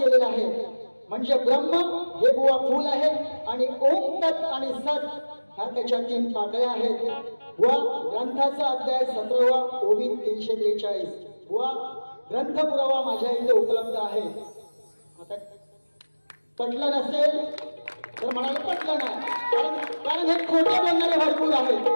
आहे. म्हणजे ब्रह्म हे बुवा फूल आहे आणि ओम तत् आणि सत ह्या त्याच्या 3 पाकळ्या आहेत. व ग्रंथाचा अध्याय 17वा ओवी 343 व ग्रंथ पुरावा माझ्या इथे उपलब्ध आहे. आता पटलं नसेल तर म्हणाले पटलं नाही, कारण हे खोटे बोलणारे भरपूर आहेत.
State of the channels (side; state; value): both; inverted; correlation -1.00